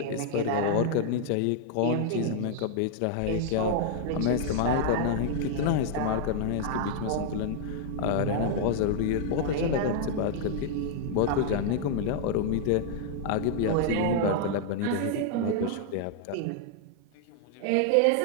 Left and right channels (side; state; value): both; different; correlation -0.01